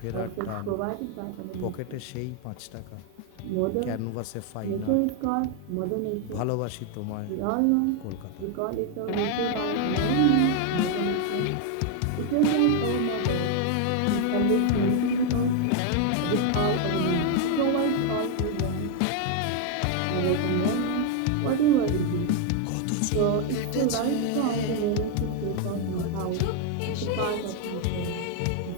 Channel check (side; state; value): both; different; correlation 0.01